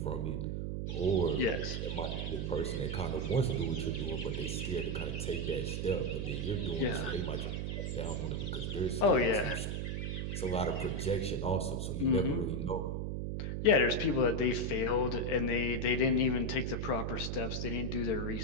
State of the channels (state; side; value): noise; right; hum, 2 dB below the sound